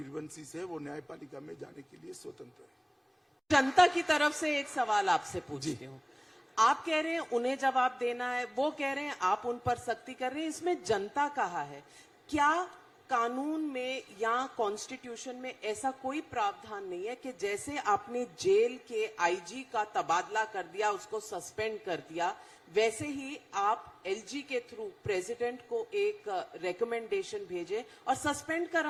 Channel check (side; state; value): both; identical; correlation 1.00